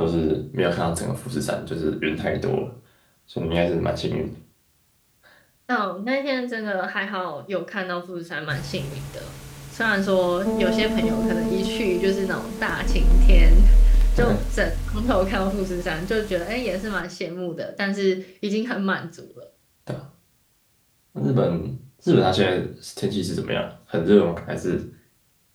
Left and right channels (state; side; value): identical; both; correlation 1.00